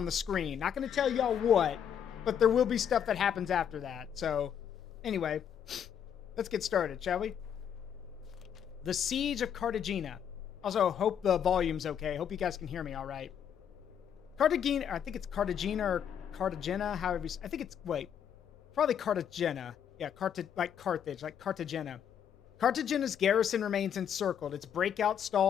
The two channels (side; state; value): right; quieter; 8.6 dB